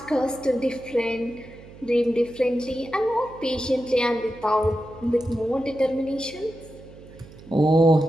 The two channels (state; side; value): noise; right; hum, 19 dB below the sound